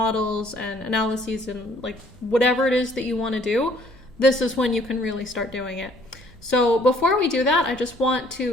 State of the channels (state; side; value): normal; both; correlation 0.60